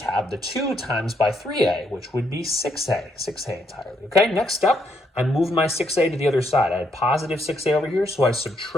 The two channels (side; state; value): both; normal; correlation 0.75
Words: have the 2 times by 3a, which would be 6a entirely. Okay, next up, I moved my 6a to the other side. I had positive 6a over here, so I